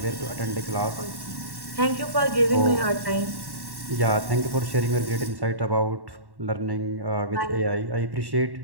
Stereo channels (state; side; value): late; left; 1.1 ms